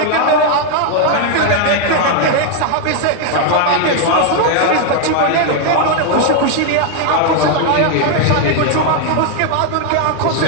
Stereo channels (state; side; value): different; both; correlation 0.00